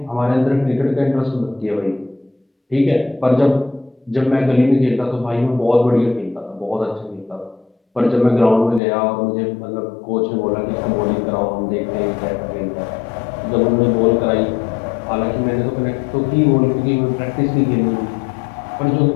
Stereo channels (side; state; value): right; drops out; at 8.8 s